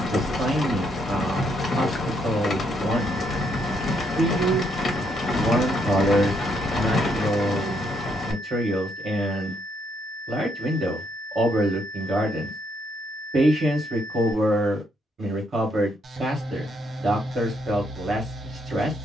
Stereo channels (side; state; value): both; normal; correlation 0.74